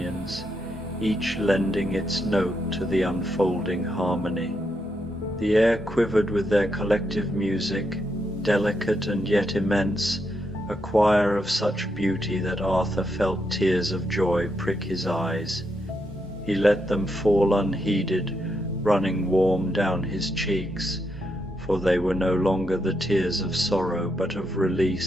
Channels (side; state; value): both; normal; correlation 0.81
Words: each lending its note to the unfolding harmony. The air quivered with their collective music, delicate and yet immense, a choir of such beauty that Arthur felt tears of joy prick his eyes. He let them fall unheeded, running warm down his cheeks, for they were no longer the tears of sorrow, but of